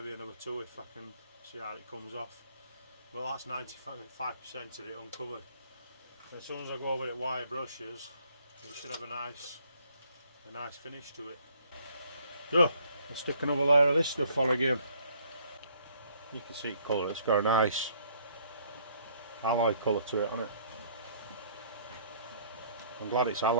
another two if I can see how it comes off. Well, that's 95% of it uncovered. As soon as I go over it with wire brushes, it should have a nice finish to it. So I'll stick another layer of this stuff on again. You can see it colour. It's got a nice alloy colour to it, hasn't it? I'm glad it's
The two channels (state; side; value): inverted; both; correlation -0.62